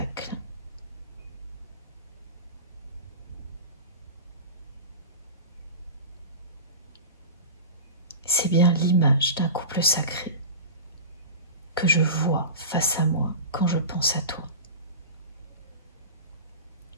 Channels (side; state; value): both; inverted; correlation -0.31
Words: c'est bien l'image d'un couple sacré que je vois face à moi quand je pense à toi.